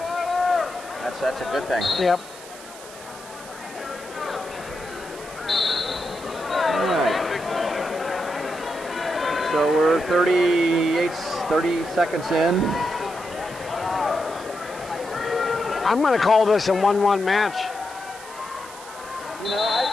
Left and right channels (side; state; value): right; noise; hiss, 17 dB below the sound